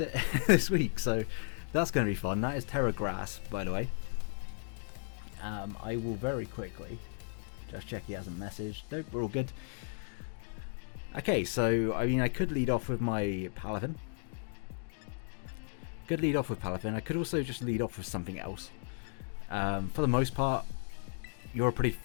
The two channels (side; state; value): right; silent; digital silence